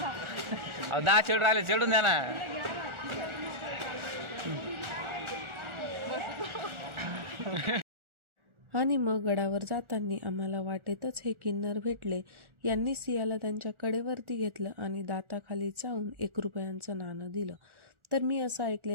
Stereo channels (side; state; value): left; late; 1.4 ms